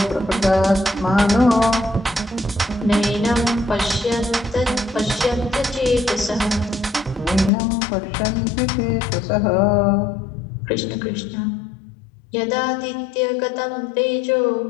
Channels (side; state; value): right; drops out; at 7.5 s